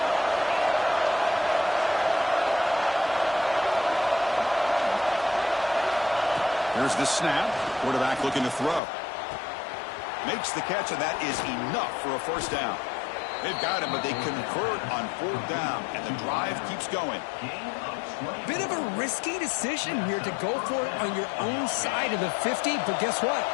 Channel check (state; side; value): drops out; right; at 8.8 s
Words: Here's the snap. Quarterback looking to throw. Makes the catch, and that is enough for a first down. They've got him, but they convert on fourth down, and the drive keeps going. Bit of a risky decision here to go for it on your own side of the 50, but guess what?